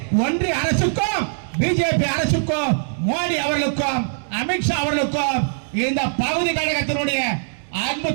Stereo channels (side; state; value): left; silent; 65 dB below the other